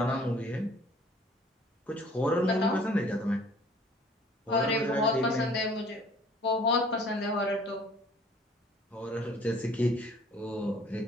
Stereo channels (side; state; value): both; normal; correlation 0.54